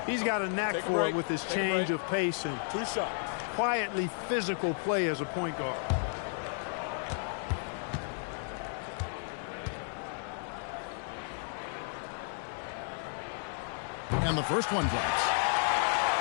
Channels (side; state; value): right; silent; 56 dB below the other